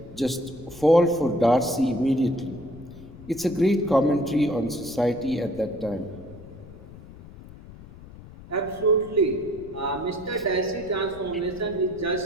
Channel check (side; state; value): left; noise; rumble, 18 dB below the sound